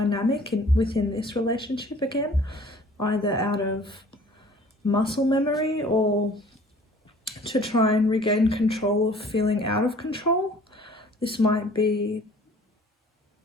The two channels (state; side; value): normal; both; correlation 0.51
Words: within this relationship again, either out of muscle memory or to try and regain control of feeling out of control. This might be,